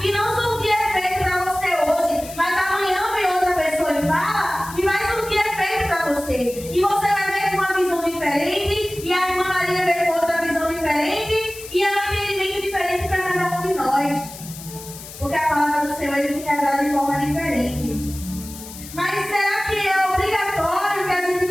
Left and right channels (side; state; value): left; noise; hiss, 14 dB below the sound